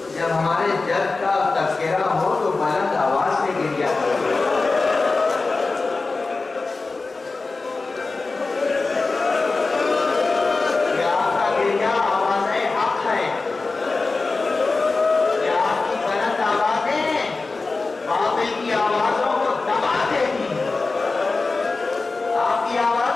جب ہمارے جد کا تذکرہ ہو تو بلند آواز سے گریا کرو. یہ آپ کا گریا آواز حق ہے. یہ آپ کی بلند آوازیں باطل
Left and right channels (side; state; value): right; quieter; 3.8 dB